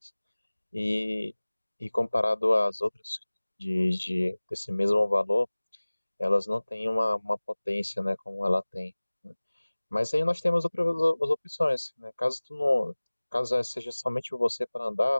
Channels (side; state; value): both; inverted; correlation -1.00